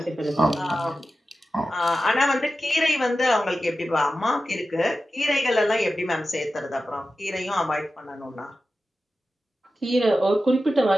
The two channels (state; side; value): normal; both; correlation 0.93